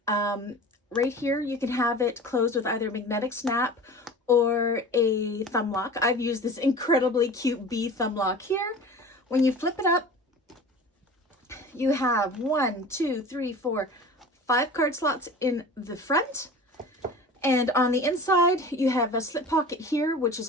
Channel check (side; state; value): both; normal; correlation 0.38